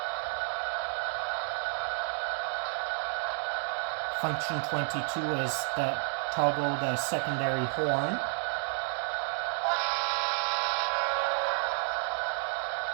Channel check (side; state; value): left; silent; 57 dB below the other